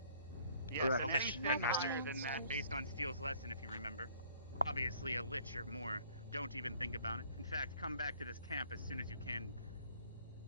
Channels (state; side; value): inverted; both; correlation -0.59